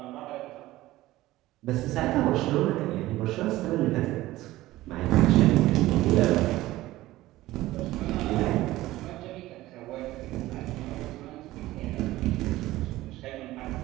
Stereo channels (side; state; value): left; quieter; 16.8 dB